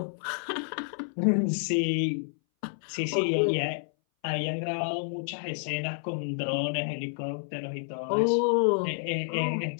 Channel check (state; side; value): silent; right; 58 dB below the other